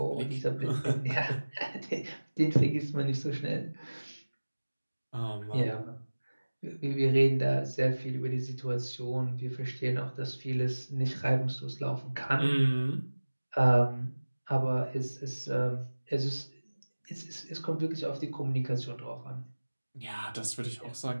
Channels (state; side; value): inverted; both; correlation -1.00